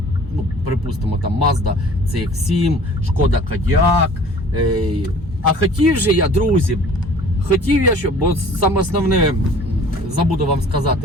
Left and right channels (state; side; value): normal; both; correlation 0.49